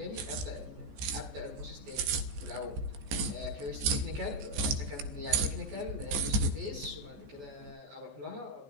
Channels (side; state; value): left; late; 14 ms